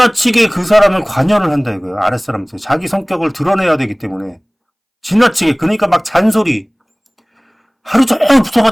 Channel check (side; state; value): both; identical; correlation 1.00